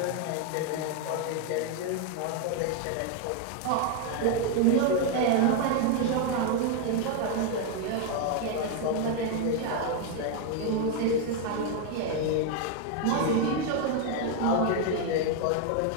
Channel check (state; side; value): different; both; correlation 0.01